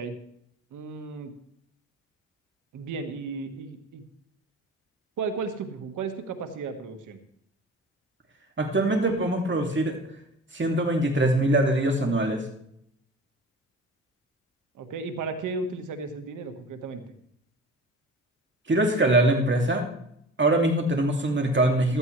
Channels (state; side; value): normal; both; correlation 0.39